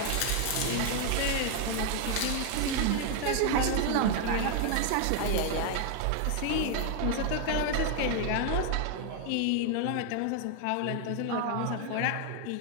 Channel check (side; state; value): both; different; correlation 0.01